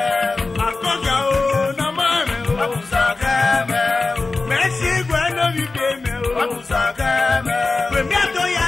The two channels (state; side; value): quieter; right; 3.6 dB